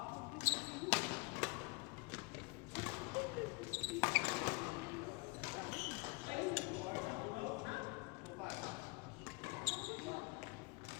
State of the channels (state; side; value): quieter; right; 28.5 dB